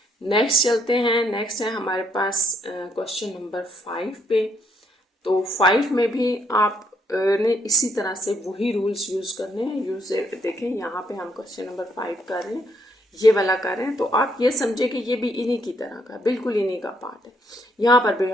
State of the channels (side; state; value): both; normal; correlation 0.72